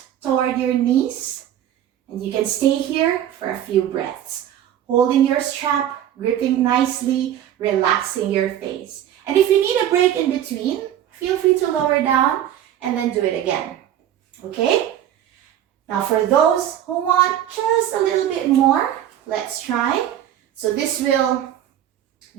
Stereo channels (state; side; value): quieter; left; 11.1 dB